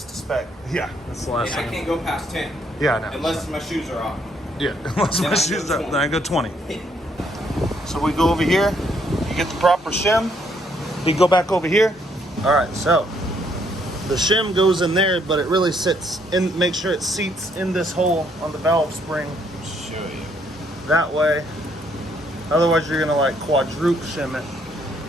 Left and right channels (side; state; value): both; normal; correlation 0.70